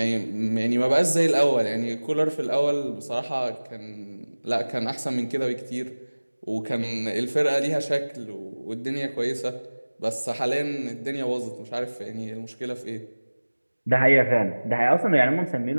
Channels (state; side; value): inverted; both; correlation -1.00